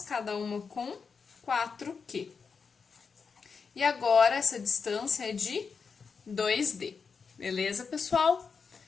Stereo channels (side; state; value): right; quieter; 5.5 dB